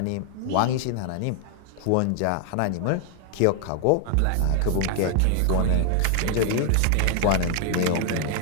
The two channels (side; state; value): both; different; correlation 0.00